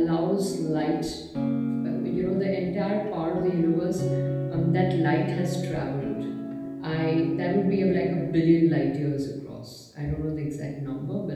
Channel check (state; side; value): identical; both; correlation 1.00